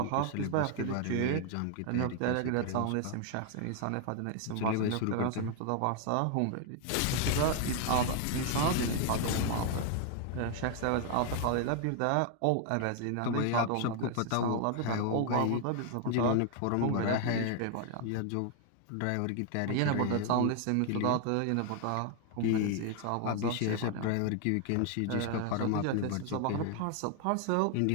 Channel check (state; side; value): different; both; correlation 0.00